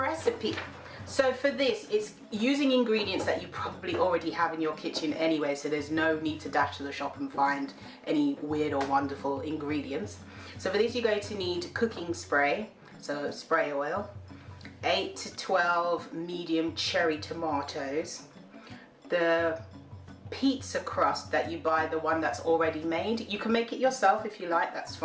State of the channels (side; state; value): both; identical; correlation 1.00